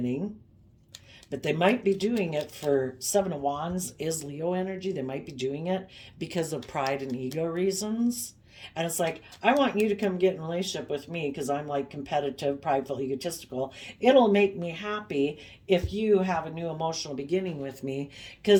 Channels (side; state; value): both; identical; correlation 1.00